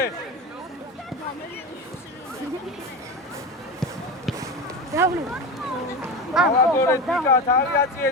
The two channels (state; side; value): normal; both; correlation 0.23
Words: დავნე. გააგორე დიკა, თალიაციე